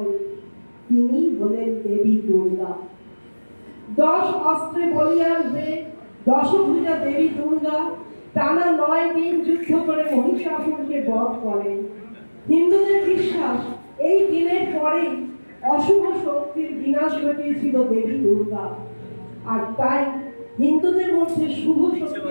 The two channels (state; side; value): inverted; both; correlation -1.00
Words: তিনি হলেন দেবী দুর্গা। 10 অস্ত্রে বলিয়ান হয়ে দশভুজা দেবী দুর্গা টানা 9 দিন যুদ্ধ করে মহিষাসুরকে বধ করেন। হিন্দুদের বিশ্বাস, এই দিনের পরেই অশুভ শক্তির বিনাশ ঘটিয়েছিল দেবী দুর্গা। আর তাই হিন্দুদের মধ্যে শুভ শক্তি